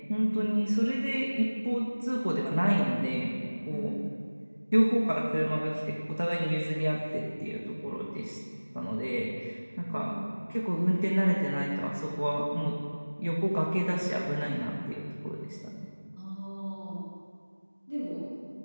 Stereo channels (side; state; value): both; inverted; correlation -1.00